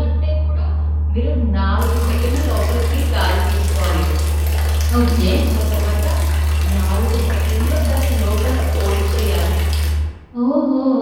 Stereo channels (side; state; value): both; identical; correlation 1.00